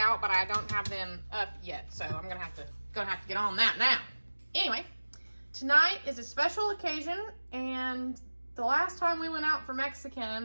but I don't have them up yet, so I'm gonna have to get on that now. Anyway, tonight is a special occasion, and the last time we went out for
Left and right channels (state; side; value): inverted; both; correlation -1.00